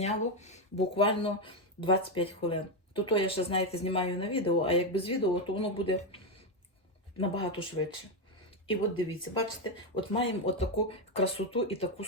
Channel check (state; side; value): normal; both; correlation 0.07